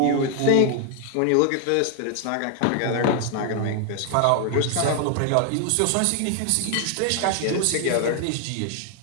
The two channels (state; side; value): different; both; correlation 0.00